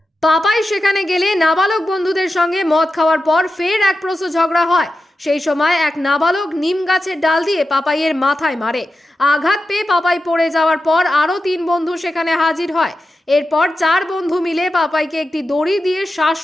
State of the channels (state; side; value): normal; both; correlation 0.91